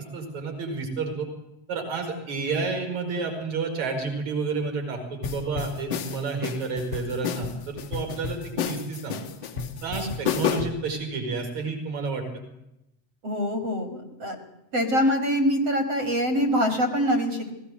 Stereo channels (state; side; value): late; left; 7.8 ms